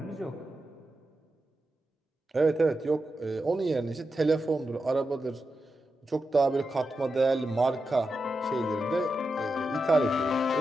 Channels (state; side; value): normal; both; correlation 0.89